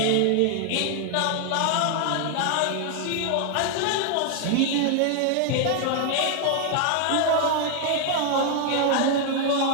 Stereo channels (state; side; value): different; both; correlation 0.00